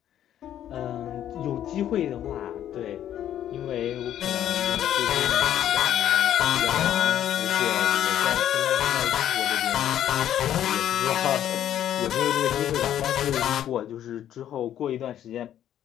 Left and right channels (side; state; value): right; quieter; 11.0 dB